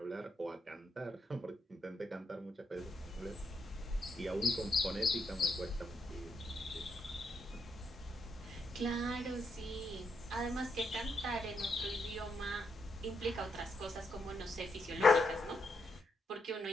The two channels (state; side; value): normal; both; correlation 0.80